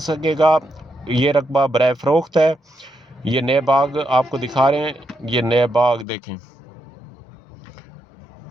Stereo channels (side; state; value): right; drops out; at 6.1 s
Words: सकेगा। ये रकबा बराए फ़रोख्त है। ये नए बाग आपको दिखा रहे हैं, ये नए बाग देखें,